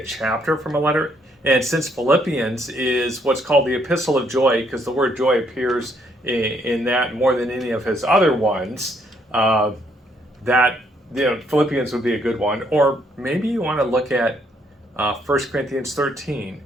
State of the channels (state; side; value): normal; both; correlation 0.70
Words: chapter from a letter. And since Philippians is what's called the Epistle of Joy, because the word joy appears in that more than any of his other ones, that Philippians would be a good one. Or maybe you want to look at 1 Corinthians 13